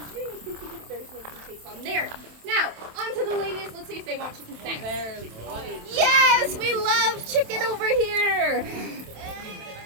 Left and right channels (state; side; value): late; left; 27 ms